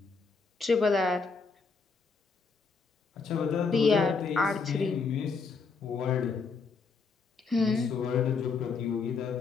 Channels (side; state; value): right; quieter; 4.8 dB